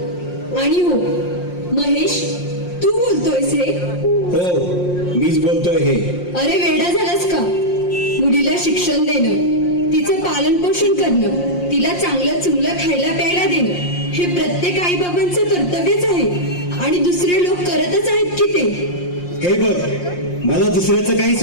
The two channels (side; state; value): right; late; 5.6 ms